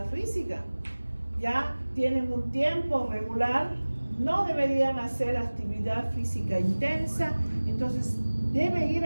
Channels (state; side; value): inverted; both; correlation -1.00